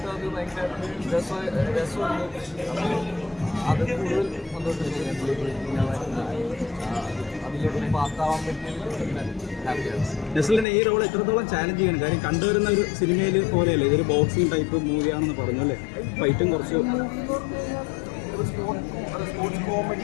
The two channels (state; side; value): drops out; right; at 10.7 s